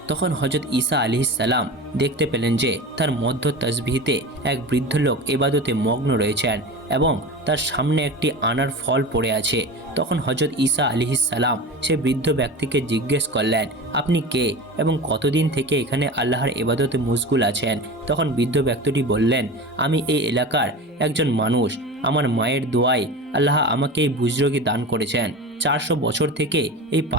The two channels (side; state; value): both; normal; correlation 0.31